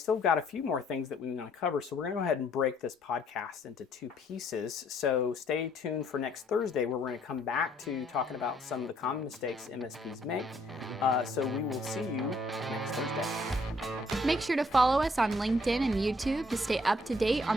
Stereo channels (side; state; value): both; normal; correlation 0.65